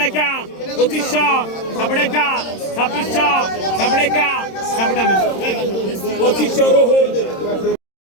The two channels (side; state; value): right; late; 26 ms